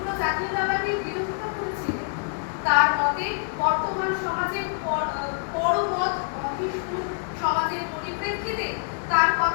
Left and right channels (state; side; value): silent; right; digital silence